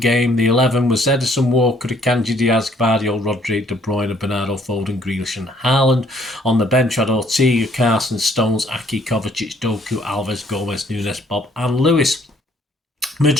The 11 was Edison, Walker, Akanji, Diaz, Gvardiol, Rodri, De Bruyne, Bernardo, Foden, Grealish and Haaland. On the bench had Ortega, Carson, Stones, Aki, Kovacic, Doku, Alves, Gomez, Nunes, Bob and Lewis.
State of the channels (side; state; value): both; normal; correlation 0.63